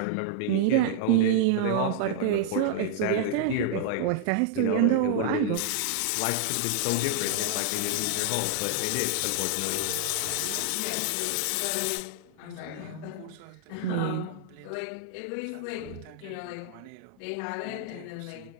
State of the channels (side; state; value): both; different; correlation -0.01